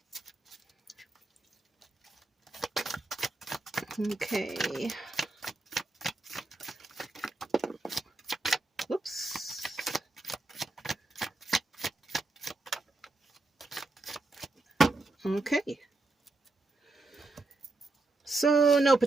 Okay. Whoops. Okay. So, no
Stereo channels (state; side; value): quieter; left; 3.1 dB